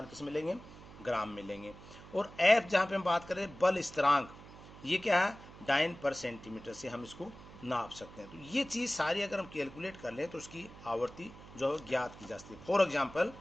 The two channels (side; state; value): right; noise; hum, 18 dB below the sound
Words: किस में लेंगे, ग्राम में लेंगे। और f जहाँ पे हम बात करें बल स्थिरांक, ये क्या है, डाइन पर सेंटीमीटर से हम इसको नाप सकते हैं। तो ये चीज़ सारी अगर हम कैलकुलेट कर लें तो उसकी आवर्ती जो है ज्ञात की जा सकती है। फॉर एग्जाम्पल